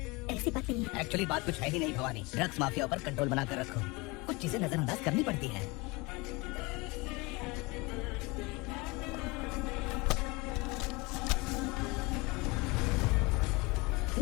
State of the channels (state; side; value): quieter; right; 25.3 dB